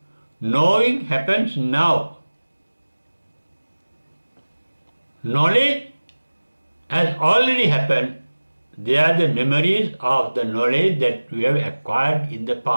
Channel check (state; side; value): inverted; both; correlation -1.00